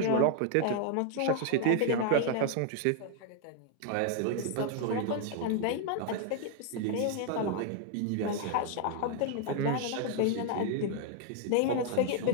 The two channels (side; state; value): both; different; correlation 0.00